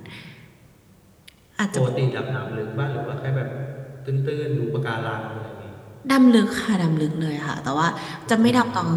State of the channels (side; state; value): both; identical; correlation 1.00